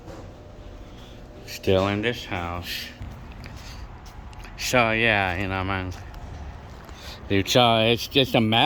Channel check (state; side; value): identical; both; correlation 1.00